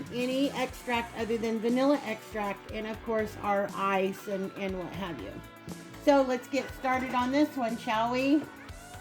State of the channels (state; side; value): identical; both; correlation 1.00